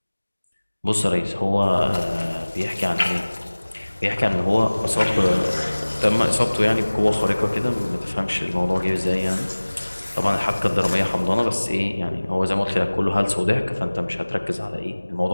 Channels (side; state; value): both; inverted; correlation -1.00